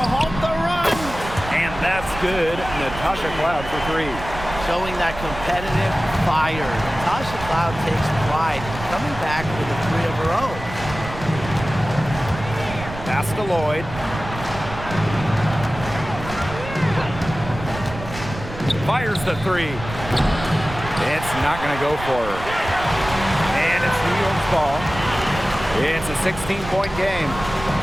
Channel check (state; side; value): noise; right; rumble, 11 dB below the sound